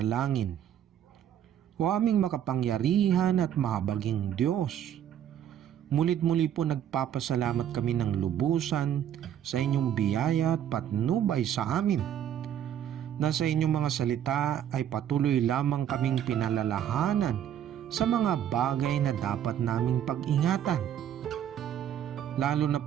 O aming makapangyarihan at mahabaging Diyos, mulit-muli po nagpapasalamat kami ng lubusan sa inyong biyaya at patnubay sa amin. Na sa inyong mga salita ay patuloy lamang kaming pinalalahanan sa mga bagay na dapat naming pag-ingatan. Lalo na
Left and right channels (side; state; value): left; quieter; 10.0 dB